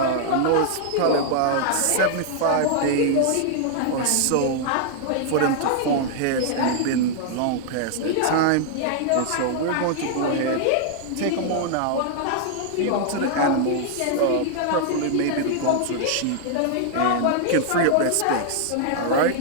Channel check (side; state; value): both; different; correlation -0.01